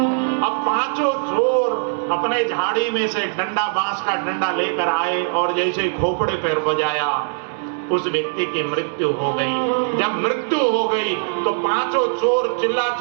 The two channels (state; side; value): silent; left; 65 dB below the other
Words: अब पांचों चोर अपने झाड़ी में से डंडा, बांस का डंडा लेकर आए और जैसे खोपड़े पर बजाया उस व्यक्ति की मृत्यु हो गई। जब मृत्यु हो गई तो पांचों चोर चिल्ला